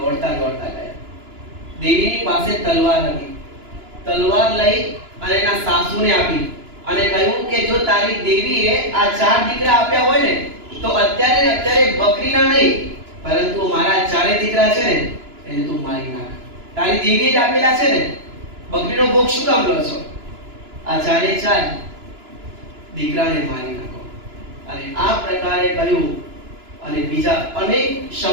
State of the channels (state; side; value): late; left; 2.9 ms